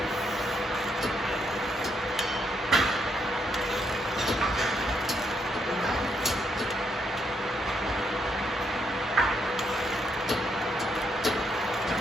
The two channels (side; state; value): both; normal; correlation 0.77